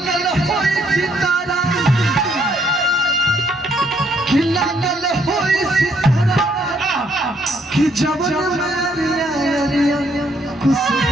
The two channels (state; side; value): normal; both; correlation 0.69